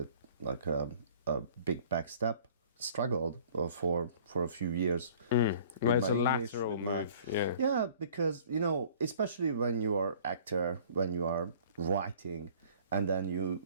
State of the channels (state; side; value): inverted; both; correlation -0.52